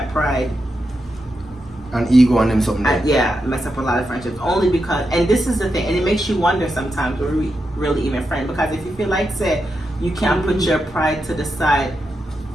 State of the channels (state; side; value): normal; both; correlation 0.86